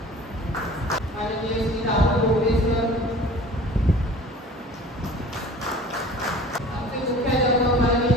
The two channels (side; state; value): both; normal; correlation 0.44